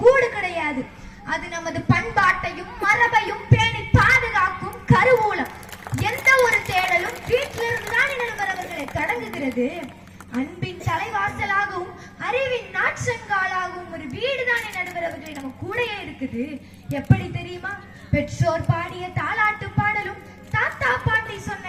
கூடு கிடையாது. அது நமது பண்பாட்டையும் மரபையும் பேணி பாதுகாக்கும் கருவூலம். எந்த ஒரு தேடலும் வீட்டிலிருந்து தான் நடுவரவர்களை தொடங்குகிறது. அன்பின் தலைவாசலாகவும் அறிவின் நாற்றங்காலாகவும் ஒரு வீடுதானே நடுவரவர்களை நம்ம கூடயே இருக்குது. எப்படி தெரியுமா? பெற்றோர் பாடிய தாலாட்டு பாடலும் தாத்தா பாட்டி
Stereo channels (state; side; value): identical; both; correlation 1.00